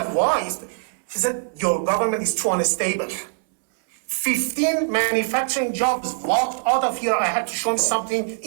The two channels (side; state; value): left; silent; 62 dB below the other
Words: why? He said, your government is too unstable. 15 manufacturing jobs walked out of here. I had to show him something